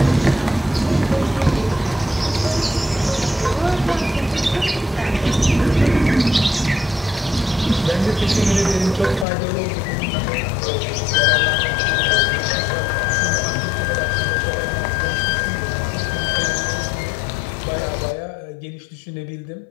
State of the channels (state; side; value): drops out; right; at 9.2 s